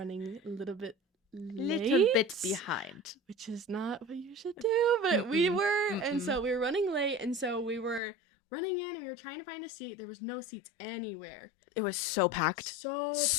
a little bit late. Little bit behind. Which is not what you should do, but we Mm-mm. were. And Mm-mm. so we were running late, and so we were running in, and we were trying to find a seat. There was no seats anywhere. It was so packed. So packed.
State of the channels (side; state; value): right; drops out; at 8.0 s